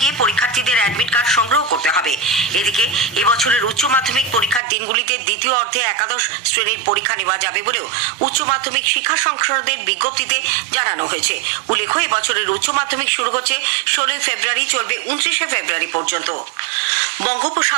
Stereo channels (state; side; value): drops out; left; at 4.6 s